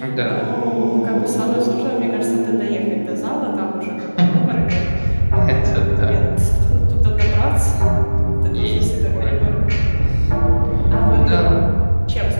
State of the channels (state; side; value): inverted; both; correlation -1.00